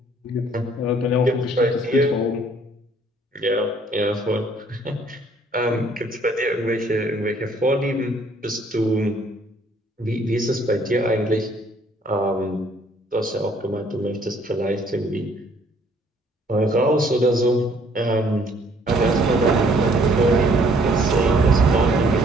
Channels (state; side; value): normal; both; correlation 0.62